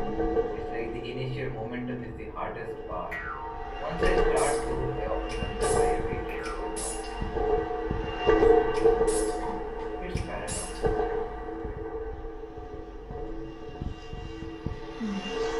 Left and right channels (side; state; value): both; identical; correlation 1.00